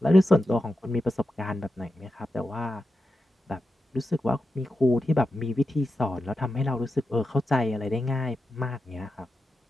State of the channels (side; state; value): both; normal; correlation 0.90